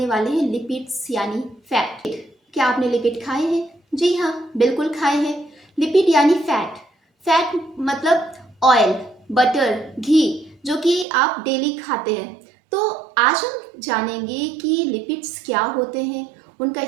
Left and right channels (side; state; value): left; drops out; at 11.1 s